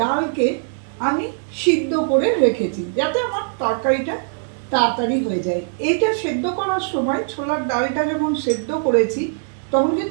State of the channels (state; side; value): silent; left; digital silence